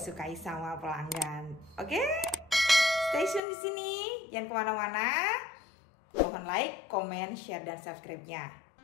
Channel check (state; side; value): drops out; right; at 3.4 s